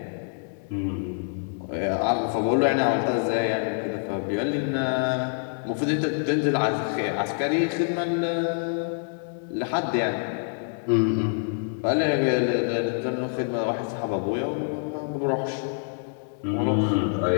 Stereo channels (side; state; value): right; silent; digital silence